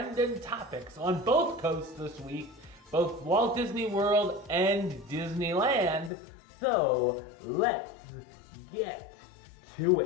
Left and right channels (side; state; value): right; drops out; at 6.1 s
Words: topics on both coasts this week, both Walt Disney World and Disneyland. So let's get to